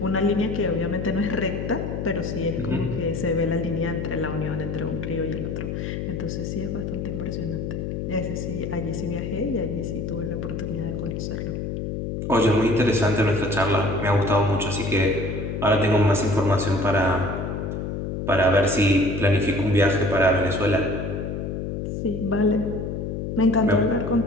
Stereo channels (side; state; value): left; noise; hum, 4 dB below the sound